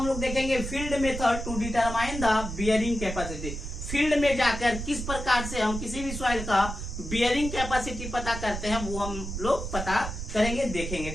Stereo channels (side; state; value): right; noise; rumble, 6 dB below the sound